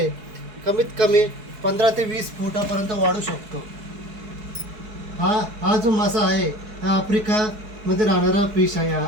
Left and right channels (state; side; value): late; left; 4.7 ms